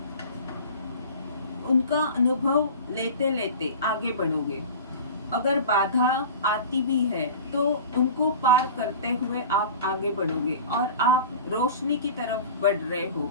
उनका अनुभव लेते लेते आगे बढ़ोगे। अगर बाधा आती भी है तो उनको पार करते हुए आप आगे बढ़ोगे, और आप रोशनी की तरफ बढ़ रहे हो,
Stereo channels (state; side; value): inverted; both; correlation -0.37